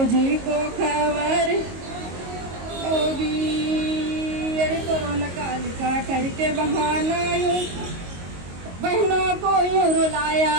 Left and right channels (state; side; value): late; left; 22 ms